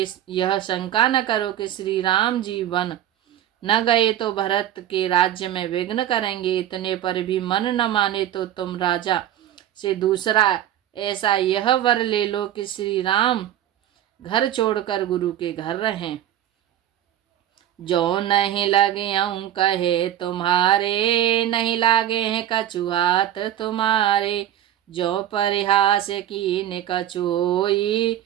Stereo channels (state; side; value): quieter; left; 11.7 dB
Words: यह शंका न करो कि श्री राम जी वन न गए तो भरत के राज्य में विघ्न करेंगे। इतने पर भी मन न माने तो तुम राजा से दूसरा ऐसा यह वर ले लो कि श्री राम घर छोड़कर गुरु के घर रहें। जो नहीं लगे कहे तुम्हारे, नहीं लागे हैं कछु हाथ तुम्हारे। जो परिहास कीन कछु होई,